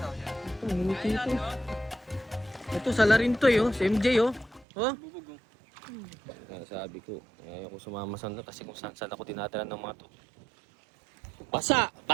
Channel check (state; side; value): drops out; left; at 4.7 s